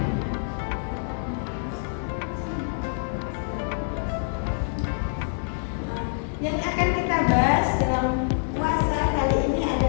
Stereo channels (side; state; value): right; silent; digital silence